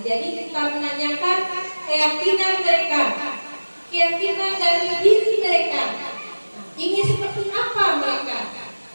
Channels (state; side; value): inverted; both; correlation -1.00